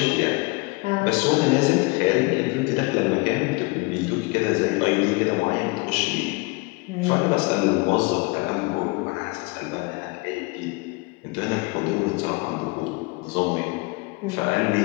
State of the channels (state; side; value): quieter; right; 26.5 dB